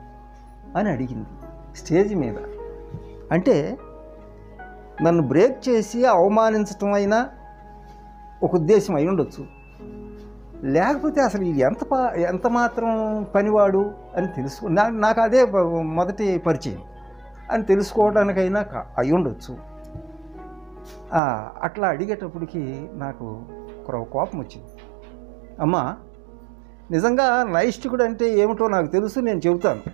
అని అడిగింది స్టేజ్ మీద. అంటే నన్ను బ్రేక్ చేసి అవమానించటం అయినా ఒక ఉద్దేశం అయి ఉండొచ్చు, లేకపోతే అసలు ఇది ఎంత మాత్రం పనివాడు అని నాకు అదే మొదటి పరిచయం అని తెలుసుకోవడానికైనా అయి ఉండొచ్చు. అట్లా అడిగేటప్పటికి నాకు కోపం వచ్చింది. అమ్మా, నిజంగా నైష్ఠికుడు అంటే ఏమిటో నాకు తెలుసు, నేను చెబుతాను.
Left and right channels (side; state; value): left; drops out; at 21.2 s